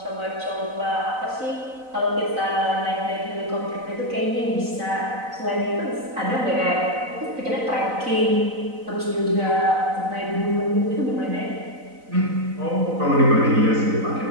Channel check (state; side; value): late; left; 4.0 ms